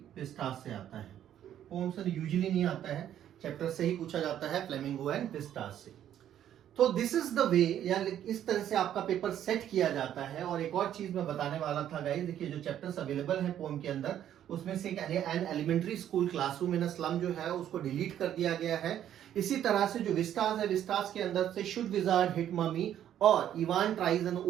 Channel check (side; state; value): left; quieter; 10.8 dB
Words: विस्टास से आता है। पोम से यूजुअली नहीं आता है, चैप्टर से ही पूछा जाता है फ्लेमिंगो एंड विस्टास से। तो दिस इज द वे, या इस तरह से आपका पेपर सेट किया जाता है। और एक और चीज मैं बताने वाला था गाइस, देखिए जो चैप्टर्स अवेलेबल हैं पोम के अंदर, उसमें से an elementary school classroom in a slum जो है उसको डिलीट कर दिया गया है। इसी तरह से जो विस्टास है, विस्टास के अंदर से शुड विजार्ड हिट ममी और Evan tries and